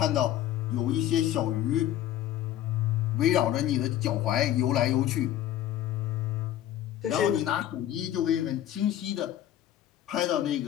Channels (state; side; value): quieter; right; 12.1 dB